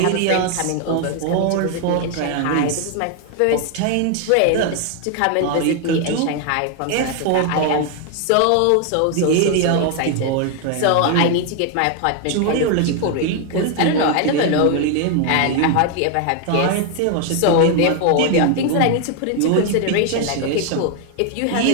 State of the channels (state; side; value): different; both; correlation 0.01